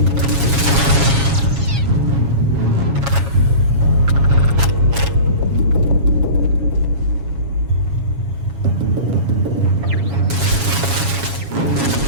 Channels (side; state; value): left; late; 7.3 ms